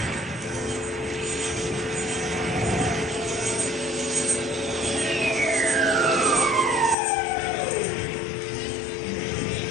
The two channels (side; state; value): right; drops out; at 7.0 s